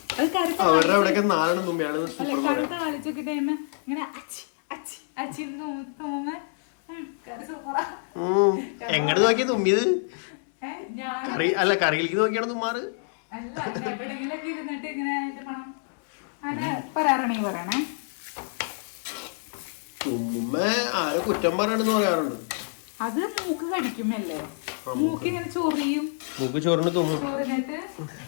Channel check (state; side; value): silent; right; digital silence